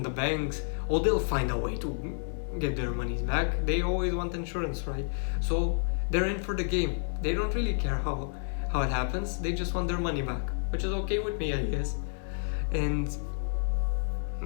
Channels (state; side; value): silent; right; digital silence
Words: the banks, they'll find a way to get their monies back. They always want insurance, right? So they're in for the game. They don't really care how it happens. They just want their money back, which is okay with me, I guess. And